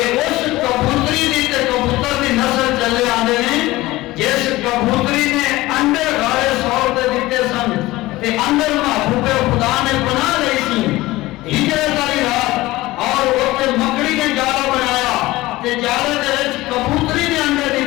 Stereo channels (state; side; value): quieter; right; 18.6 dB